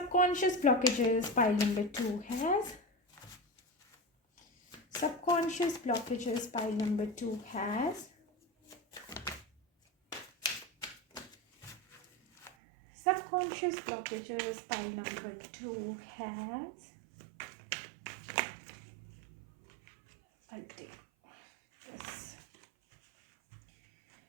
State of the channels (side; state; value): left; drops out; at 12.5 s